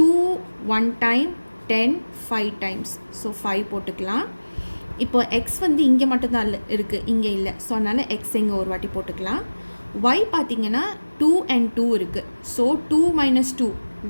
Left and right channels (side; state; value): both; inverted; correlation -1.00